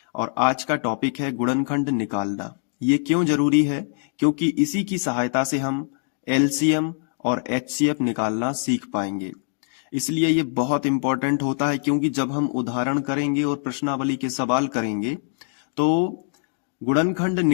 और आज का टॉपिक है गुणनखंड निकालना। ये क्यों जरूरी है? क्योंकि इसी की सहायता से हम एलसीएम और एचसीएफ निकालना सीख पाएंगे। इसलिए ये बहुत इंपॉर्टेंट होता है, क्योंकि जब हम उदाहरण करेंगे और प्रश्नावली के सवाल करेंगे तो गुणनखंड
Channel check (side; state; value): right; silent; digital silence